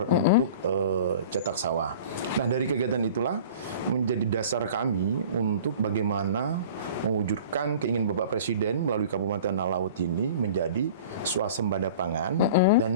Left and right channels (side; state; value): both; inverted; correlation -0.43